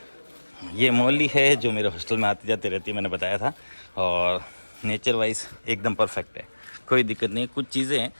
ये मौली है जो मेरे हॉस्टल में आती जाती रहती है, मैंने बताया था। और नेचर वाइज एकदम परफेक्ट है, कोई दिक्कत नहीं। कुछ चीज़ें हैं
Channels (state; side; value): inverted; both; correlation -1.00